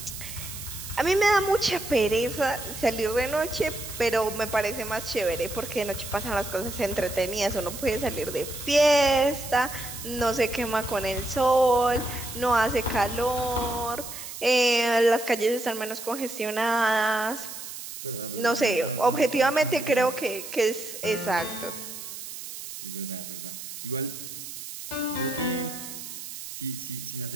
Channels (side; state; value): right; noise; hiss, 10 dB below the sound